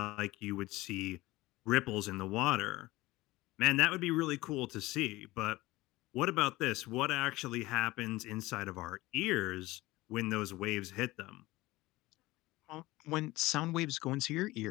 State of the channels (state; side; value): quieter; right; 19.3 dB